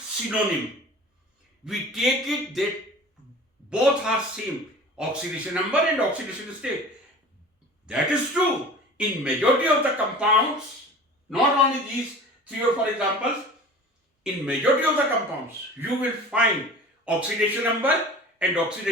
synonym. We take it that both are same, oxidation number and oxidation state. That is true in majority of the compounds, not only these 3 or 4 examples. In majority of the compounds, you will find oxidation number and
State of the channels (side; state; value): both; normal; correlation 0.40